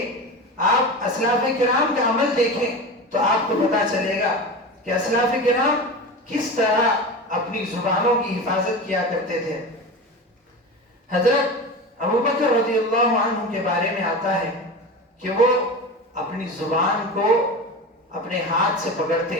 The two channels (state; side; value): normal; both; correlation 0.27